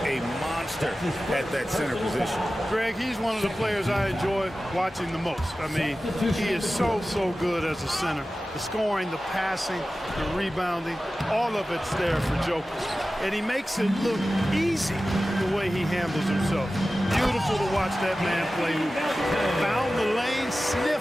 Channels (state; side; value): normal; both; correlation 0.95